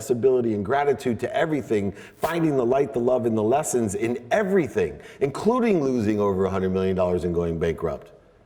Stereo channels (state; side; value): identical; both; correlation 1.00